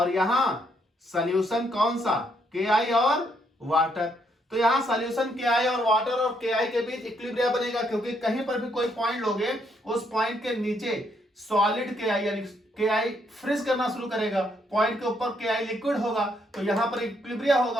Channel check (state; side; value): normal; both; correlation 0.73